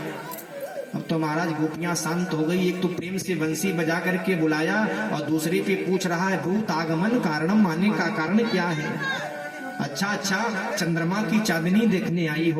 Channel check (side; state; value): both; identical; correlation 1.00